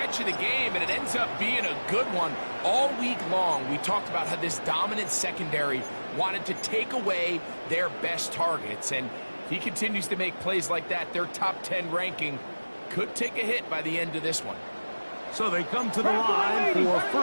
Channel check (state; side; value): inverted; both; correlation -1.00